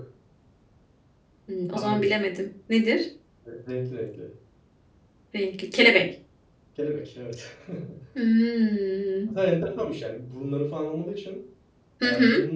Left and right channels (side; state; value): both; identical; correlation 1.00